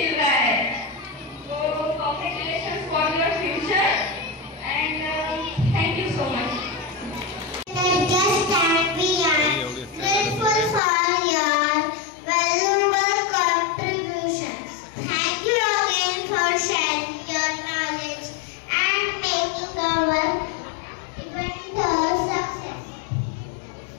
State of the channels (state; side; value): drops out; right; at 10.8 s